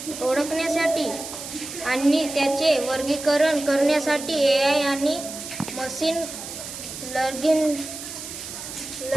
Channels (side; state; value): right; noise; hiss, 10 dB below the sound